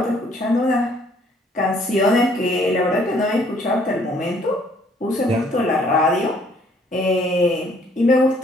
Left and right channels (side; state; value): both; normal; correlation 0.62